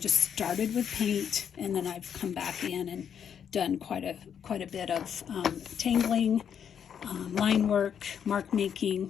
started with paint, and then I've come back in and done quite a bit of tangling, line work, mark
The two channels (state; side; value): quieter; right; 8.1 dB